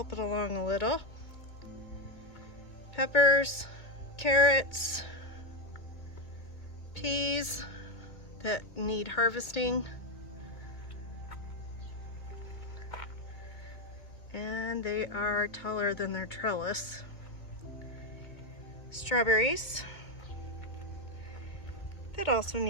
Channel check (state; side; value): late; right; 2.5 ms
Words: it along a little. Peppers, carrots, peas that need harvesting, and they are taller than their trellis. Strawberries that also